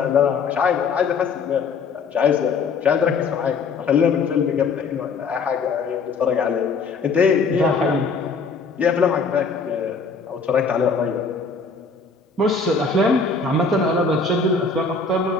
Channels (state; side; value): quieter; right; 4.7 dB